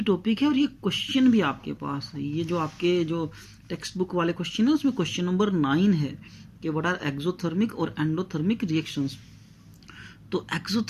टॉपिक है और ये क्वेश्चन भी आपके पास है। ये जो आपके जो टेक्स्ट बुक वाले क्वेश्चन है उसमें क्वेश्चन नंबर 9 है कि व्हाट आर एक्सोथर्मिक और एंडोथर्मिक रिएक्शंस। तो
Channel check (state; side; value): identical; both; correlation 1.00